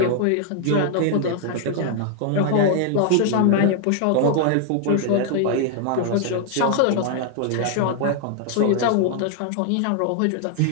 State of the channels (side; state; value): both; different; correlation 0.00